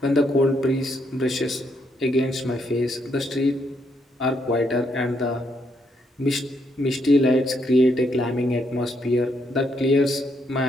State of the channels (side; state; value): both; normal; correlation 0.75